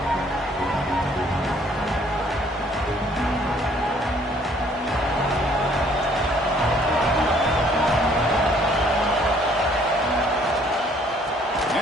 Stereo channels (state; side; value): normal; both; correlation 0.61